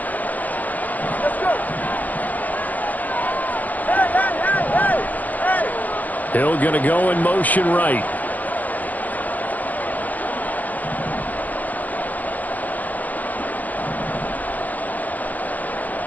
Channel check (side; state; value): right; late; 0.081 ms